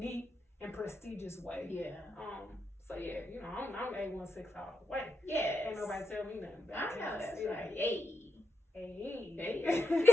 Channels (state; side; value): normal; both; correlation 0.84